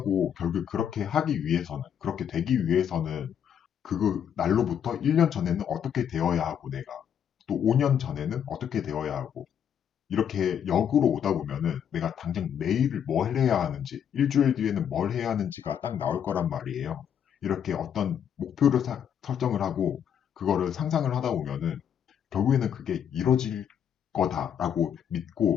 결국 그렇게 하기 위해서는, 그렇게 되기 위해서는 그 날로부터 1년 전에는 어떻게 되어야 하고 내가 또 5년 전에는 어떻게 되어야 하고 이렇게 역으로 오다 보면은 내가 당장 내일 뭘 해야 하는지, 일주일 뒤에는 뭘 해야 하는지가 딱 나올 거란 말이에요. 이렇게 어떤 목표를 설정을 하고 그거를 상상을 하다 보면은 결국에는 그게 이뤄질 거다라고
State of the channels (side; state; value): right; quieter; 8.7 dB